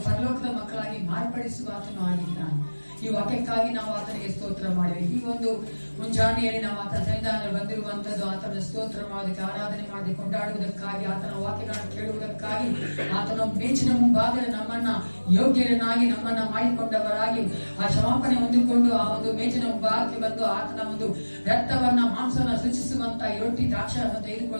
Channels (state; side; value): inverted; both; correlation -1.00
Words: ಪರಲೋಕದ ಮಕ್ಕಳಾಗಿ ಮಾರ್ಪಡಿಸುವ ಆತನು ಆಗಿದ್ದಾನೆ. ಈ ವಾಕ್ಯಕ್ಕಾಗಿ ನಾವು ಆತನಿಗೆ ಸ್ತೋತ್ರ ಮಾಡಿವೆ. ಈ ಒಂದು ಮುಂಜಾನೆಯಲ್ಲಿ ನಾವು ಆತನ ಸನ್ನಿಧಾನದಲ್ಲಿ ಬಂದಿರುವಂತದ್ದು ಆತನ ಸ್ತೋತ್ರ ಮಾಡೋದಕ್ಕೆ, ಆರಾಧನೆ ಮಾಡಿ ಕೊಂಡಾಡುವುದಕ್ಕಾಗಿ, ಆತನ ವಾಕ್ಯಗಳನ್ನು ಕೇಳುವುದಕ್ಕಾಗಿ, ಆತನ ಮೇಚಿನ ಮುಂಭಾಗದಲ್ಲಿ ನಮ್ಮನ್ನ ಯೋಗ್ಯರನ್ನಾಗಿ ನಮ್ಮನ್ನ ಮಾಡಿಕೊಂಡವರಾಗಿ ಆ ಕ್ಷಮಾಪಣೆ ಹೊಂದಿಕೊಂಡು ಆ ಒಂದು ಮೇಚಿನ ಮುಂಭಾಗಕ್ಕೆ ಬಂದು ಆತನ ಒಂದು ರಕ್ತವನ್ನ ಮಾಂಸವನ್ನ ಸೂಚಿಸುವಂತ ಈ ರೊಟ್ಟಿ ದ್ರಾಕ್ಷವನ್ನು